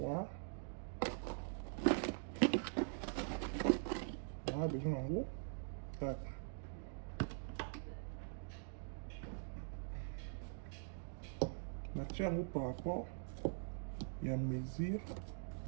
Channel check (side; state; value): left; silent; digital silence